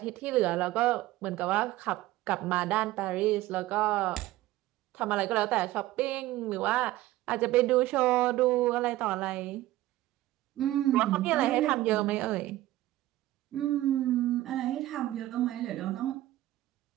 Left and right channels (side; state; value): left; quieter; 16.0 dB